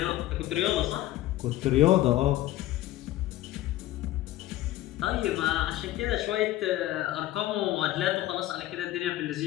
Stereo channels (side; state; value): right; quieter; 15.1 dB